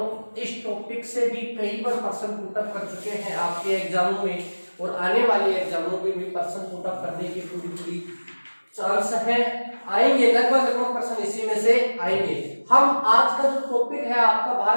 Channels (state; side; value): inverted; both; correlation -1.00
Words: इस टॉपिक से भी कई बार प्रश्न पुटअप कर चुके हैं आपके एग्जामों में और आने वाले एग्जामों में भी प्रश्न पुटअप करने की पूरी चांस है। आएंगे लगभग प्रश्न इसी में से आएंगे। हम आज का जो टॉपिक है आपका